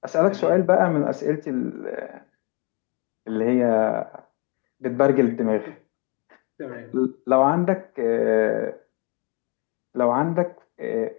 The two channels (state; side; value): quieter; right; 31.6 dB